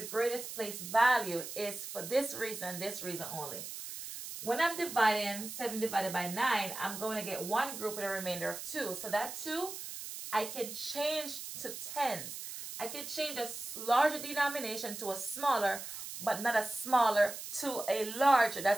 greatest place value is for this reason only. when I'm dividing 7 divided by 9, I'm going to get one group with a remainder of 2. So that 2, I can change to tens. I can change a larger denomination to a smaller, but not a smaller to a larger.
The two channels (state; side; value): noise; right; hiss, 9 dB below the sound